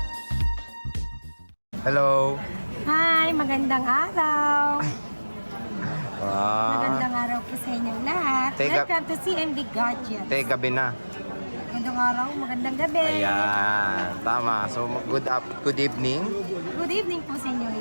Hello! Hi, magandang araw. Wow! Magandang araw po sa inyong lahat. Welcome to CMB Gadgets. Gabi na. Magandang araw, magandang gabi. Ayan, tama. So, good evening. Good evening po sa inyong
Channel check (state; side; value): inverted; both; correlation -1.00